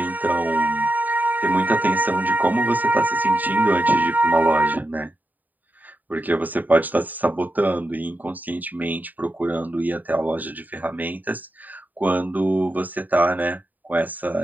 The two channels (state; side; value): late; left; 0.085 ms